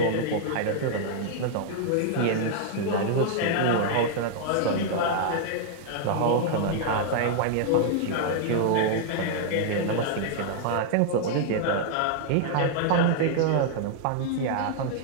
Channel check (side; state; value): both; different; correlation -0.01